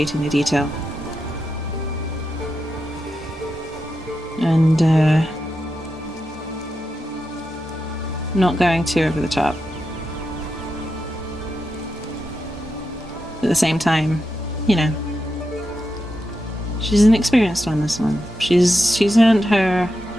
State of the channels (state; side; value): normal; both; correlation 0.87